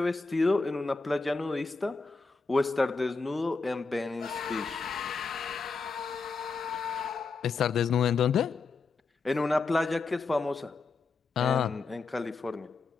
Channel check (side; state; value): right; quieter; 4.3 dB